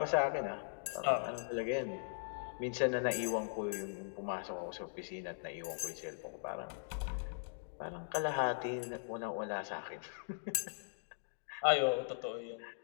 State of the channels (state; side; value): silent; right; digital silence